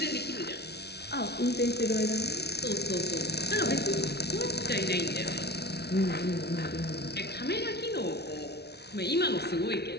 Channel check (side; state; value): right; late; 0.48 ms